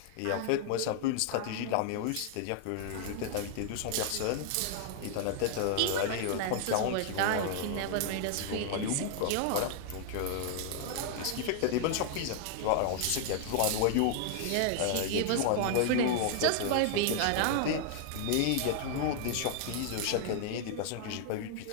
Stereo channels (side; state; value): both; different; correlation 0.00